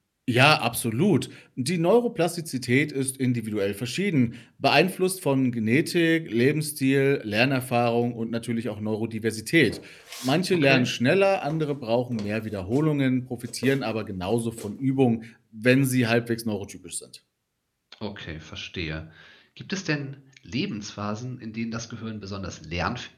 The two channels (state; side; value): identical; both; correlation 1.00